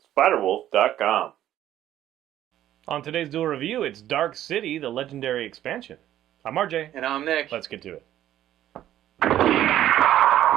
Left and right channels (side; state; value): left; quieter; 12.4 dB